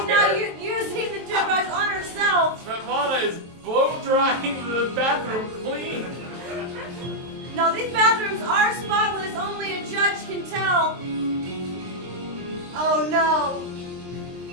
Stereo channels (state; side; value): late; left; 23 ms